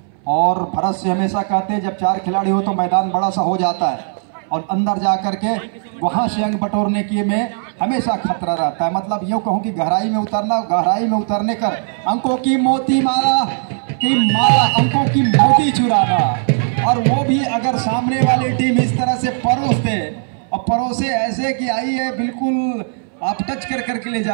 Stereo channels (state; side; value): silent; left; 65 dB below the other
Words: और भरत से हमेशा कहते हैं जब 4 खिलाड़ी हो तो मैदान बड़ा सा हो जाता है, और अंदर जा करके वहां से अंक बटोरने की में हमेशा खतरा रहता है। मतलब यूँ कहूँ कि गहराई में उतरने कर अंकों की मोती माला अंकों की मोती चुराना, और वो भी अगर सामने वाली टीम इस तरह से परोस दे, और परोसे ऐसे कि आइए बिल्कुल आप टच कर करके ले